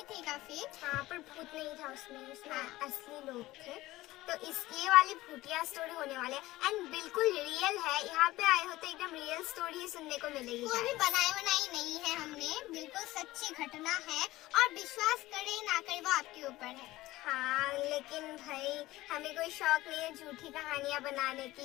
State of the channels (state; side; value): quieter; right; 17.7 dB